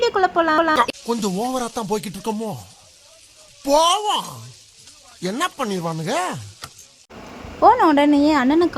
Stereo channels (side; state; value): both; identical; correlation 1.00